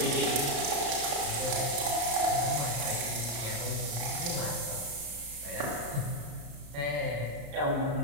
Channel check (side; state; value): left; late; 34 ms